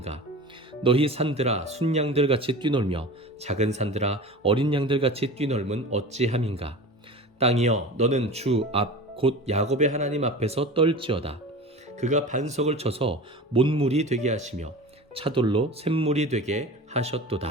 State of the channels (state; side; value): normal; both; correlation 0.34